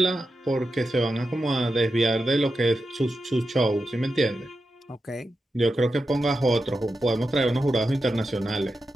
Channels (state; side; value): normal; both; correlation 0.89